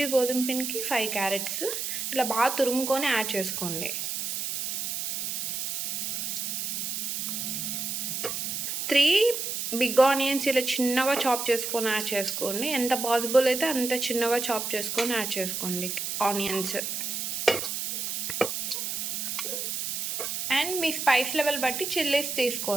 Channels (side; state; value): right; noise; hiss, 2 dB below the sound